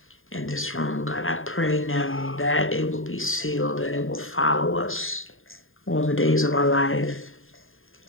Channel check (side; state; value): right; late; 0.59 ms